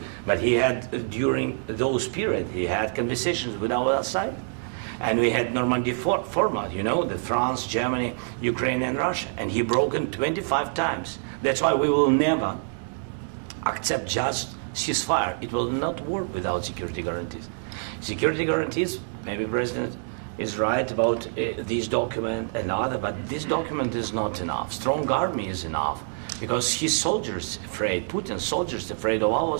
but he had during those period. He had conversations with our side, and we had Normandy format. You know, the France, Germany, Ukraine, and Russia, and he broken 25 times. That's why we will never accept just ceasefire. It will not work without security guarantees. Security guarantees, maybe President is right about this document and other, but this document is not enough. Strong army is enough, because his soldiers afraid, Putin's soldiers afraid of our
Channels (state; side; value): silent; left; digital silence